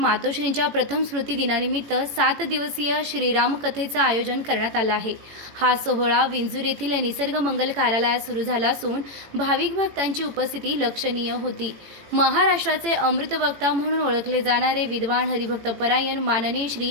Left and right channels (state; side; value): late; left; 18 ms